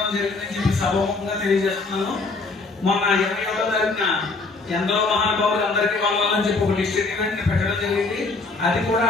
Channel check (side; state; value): right; quieter; 3.8 dB